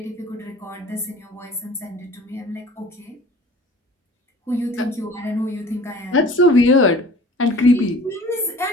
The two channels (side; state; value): both; normal; correlation 0.45